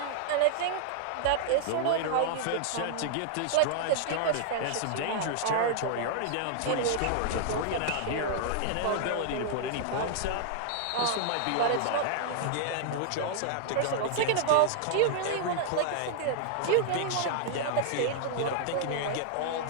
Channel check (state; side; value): different; both; correlation -0.01